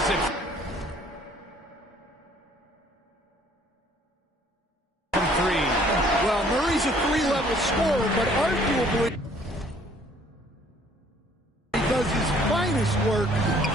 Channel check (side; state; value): both; normal; correlation 0.59